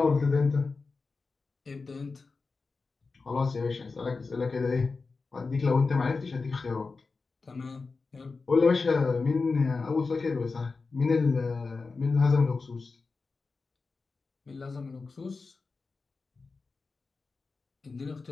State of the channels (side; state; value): right; quieter; 4.2 dB